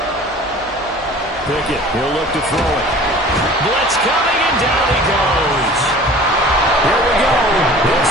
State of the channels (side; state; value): both; normal; correlation 0.44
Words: Pickett, he'll look to throw it. Blitz coming, and down he goes. Here we go.